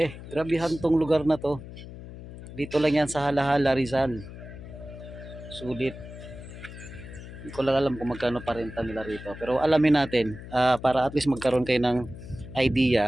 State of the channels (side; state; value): left; noise; hum, 13 dB below the sound